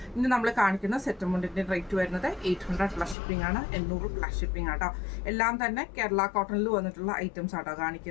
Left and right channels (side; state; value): right; drops out; at 3.2 s